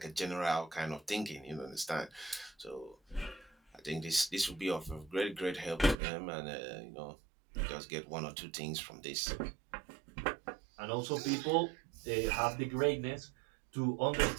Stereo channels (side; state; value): left; drops out; at 6.0 s